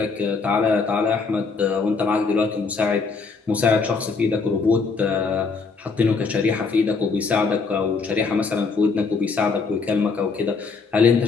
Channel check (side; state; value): right; quieter; 4.6 dB